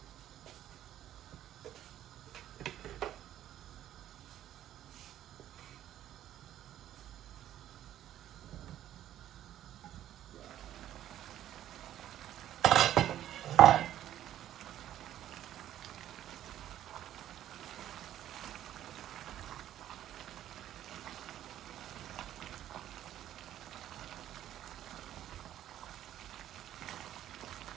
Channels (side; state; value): left; quieter; 12.0 dB